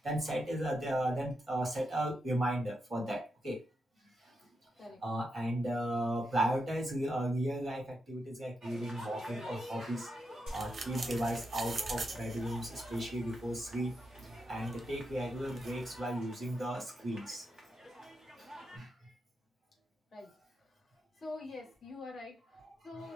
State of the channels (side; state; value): both; normal; correlation 0.85